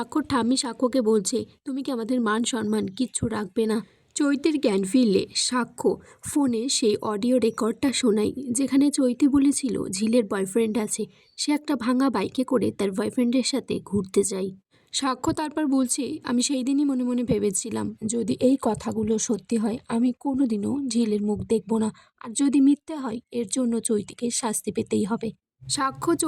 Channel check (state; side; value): identical; both; correlation 1.00